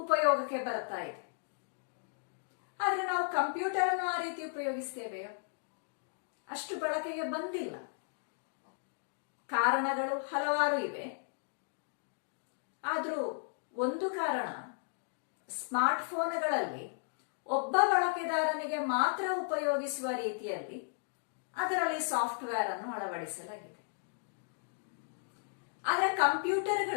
ಬರ್ತಾ ಇದೆ. ಆದ್ರೆ ನಾವು ಕಂಪ್ಯೂಟರ್ ಅನ್ನು ಆ ರೀತಿ ಉಪಯೋಗಿಸ್ತೇವೆಯೋ? ಅಷ್ಟು ಬಳಕೆಗೆ ಬಂದಿಲ್ಲ. ಕಾರಣಗಳು ಹಲವಾರು ಇವೆ. ಆದ್ರೂ ಒಂದು ಕಾರಣ, ಸ್ಮಾರ್ಟ್ ಫೋನ್ಗಳಲ್ಲಿ ಒಬ್ಬ ಬಳಕೆದಾರನಿಗೆ ಮಾತ್ರ ಉಪಯೋಗಿಸುವ ರೀತಿಯಲ್ಲಿ ಅದರಲ್ಲಿ ಸಾಫ್ಟ್ವೇರ್ ಅನ್ನು ಅಳವಡಿಸಲಾಗಿದೆ. ಆದರೆ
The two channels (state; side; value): silent; right; digital silence